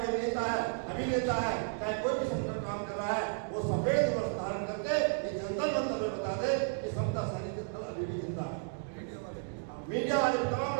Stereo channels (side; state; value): left; silent; digital silence